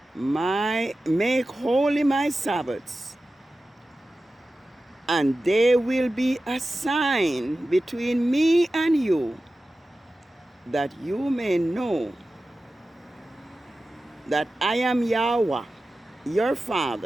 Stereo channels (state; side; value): normal; both; correlation 0.94